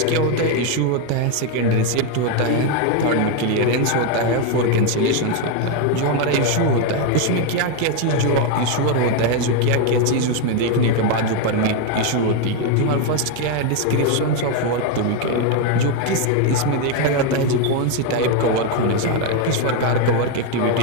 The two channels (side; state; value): both; different; correlation 0.01